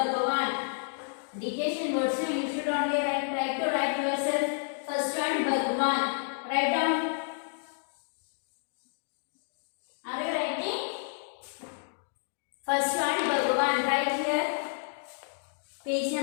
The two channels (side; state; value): right; silent; digital silence